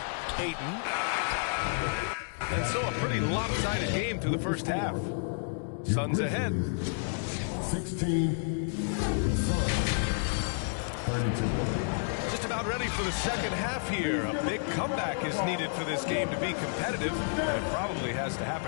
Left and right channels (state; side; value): silent; right; digital silence